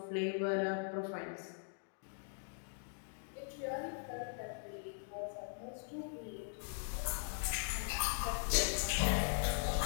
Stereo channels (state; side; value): silent; right; digital silence